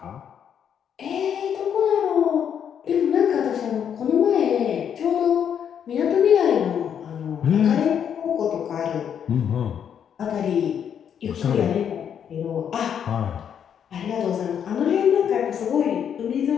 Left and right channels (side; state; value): right; quieter; 8.4 dB